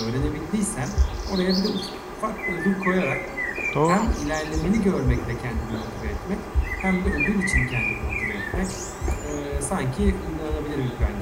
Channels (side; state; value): both; identical; correlation 1.00